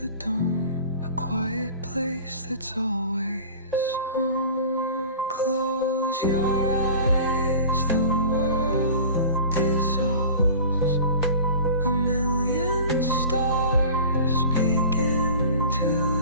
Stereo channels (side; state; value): both; inverted; correlation -0.40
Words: dome, a quiet place that's always home. Close your eyes, the world dissolves. A million stars begin to